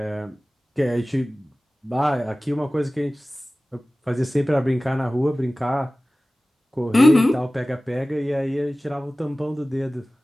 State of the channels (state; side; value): normal; both; correlation 0.97